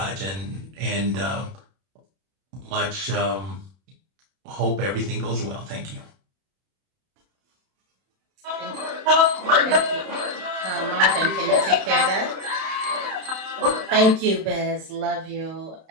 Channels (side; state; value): left; late; 31 ms